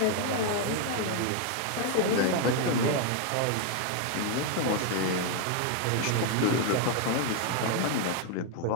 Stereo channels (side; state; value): both; different; correlation 0.00